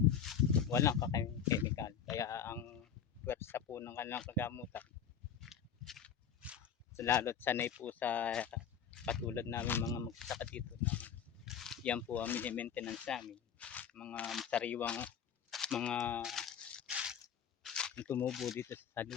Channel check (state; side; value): quieter; right; 7.9 dB